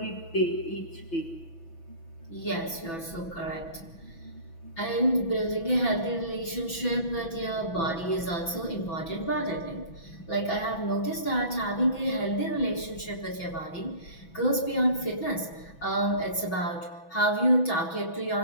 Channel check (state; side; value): late; right; 6.1 ms